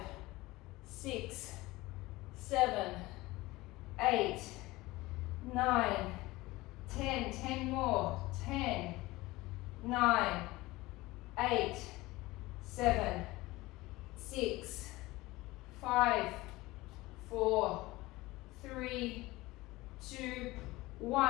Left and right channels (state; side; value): quieter; right; 19.9 dB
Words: 6, 7, 8, 9, 10. 10 more. 10, 9, 8, 7, 6, 5, 4, 3, 2,